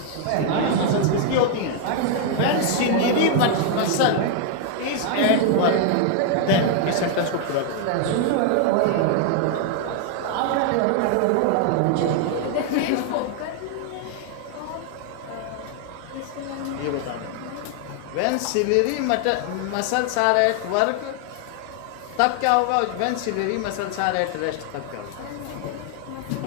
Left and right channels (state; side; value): different; both; correlation 0.00